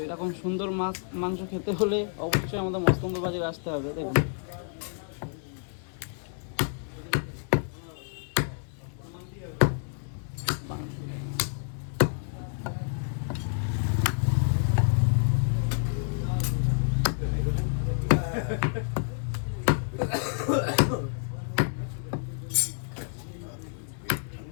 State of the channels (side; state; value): right; silent; 57 dB below the other